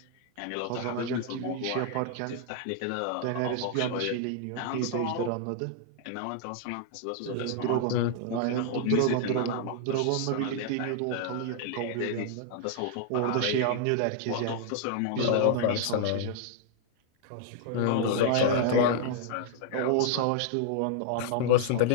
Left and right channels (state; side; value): different; both; correlation -0.01